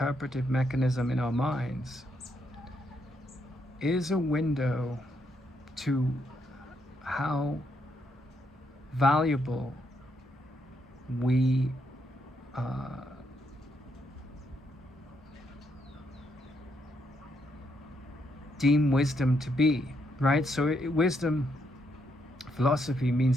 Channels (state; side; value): normal; both; correlation 0.77